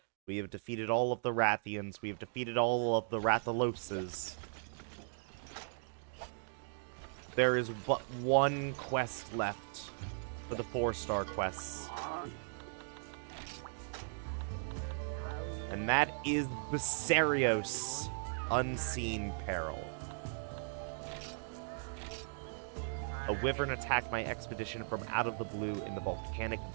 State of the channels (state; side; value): silent; left; digital silence